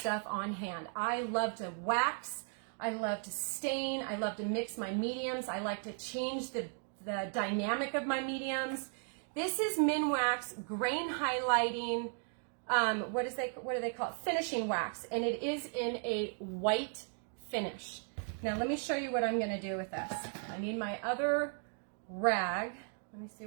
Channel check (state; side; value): silent; left; 54 dB below the other